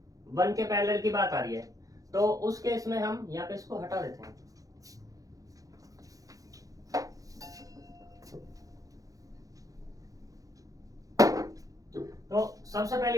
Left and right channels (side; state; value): left; late; 0.17 ms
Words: 1 के पैरेलल की बात आ रही है। तो उस केस में हम यहाँ पे इसको हटा देते हैं। तो सबसे